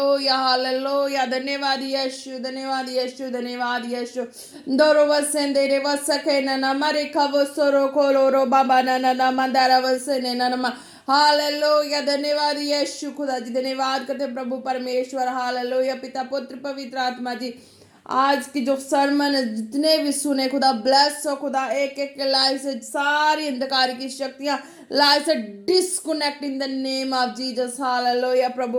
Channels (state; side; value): identical; both; correlation 1.00